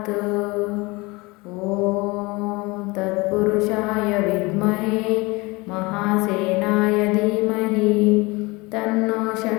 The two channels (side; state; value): right; quieter; 24.3 dB